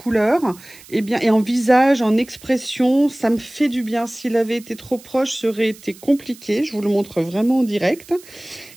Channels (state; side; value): noise; right; hiss, 22 dB below the sound